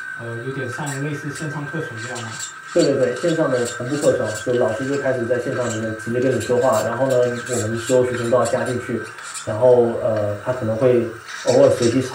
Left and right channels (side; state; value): both; identical; correlation 1.00